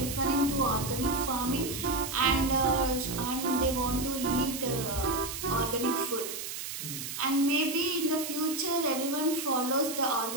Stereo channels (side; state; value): right; noise; hiss, 6 dB below the sound